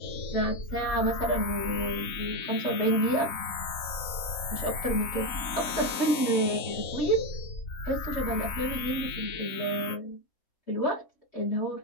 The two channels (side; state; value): right; late; 3.9 ms